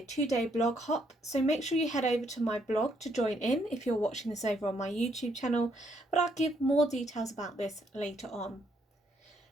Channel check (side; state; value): both; normal; correlation 0.72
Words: 2-day blog hop, so make sure you head over to my blog to join in if you're watching this over on my YouTube channel, but I'll give more details about this later on.